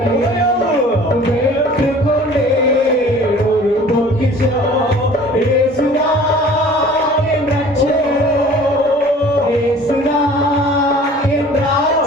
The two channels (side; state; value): both; normal; correlation 0.48